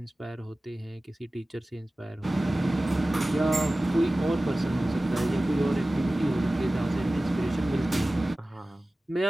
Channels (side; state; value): both; normal; correlation 0.97